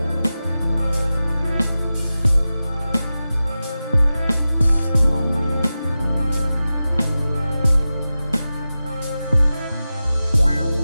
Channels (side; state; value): both; inverted; correlation -0.94